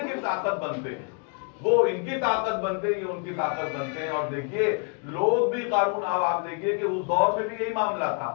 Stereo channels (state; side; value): quieter; right; 38.2 dB